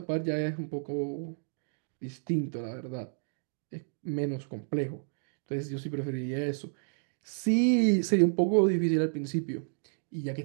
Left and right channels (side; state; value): left; silent; digital silence